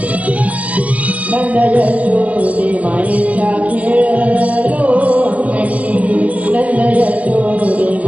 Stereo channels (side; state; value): left; late; 0.067 ms